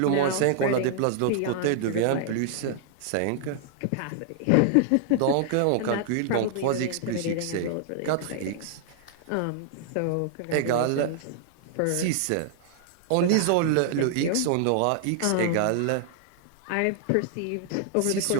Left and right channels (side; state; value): both; different; correlation -0.01